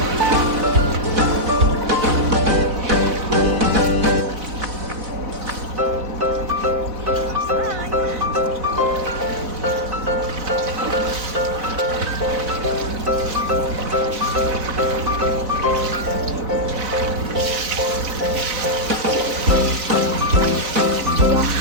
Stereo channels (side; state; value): left; late; 4.1 ms